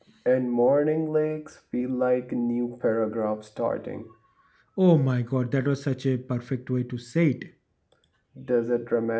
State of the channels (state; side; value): identical; both; correlation 1.00